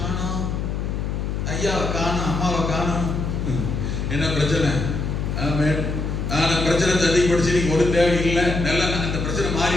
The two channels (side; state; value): left; noise; hum, 2 dB below the sound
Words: ஐயாவை காணோம், அம்மாவை காணோம், என்ன பிரச்சனை? ஆமென். ஆனா பிரச்சனை அதிகப்படுத்தி நீங்க ஒரு தேவை இல்லை, நல்லா அந்த பிரச்சனை மாறி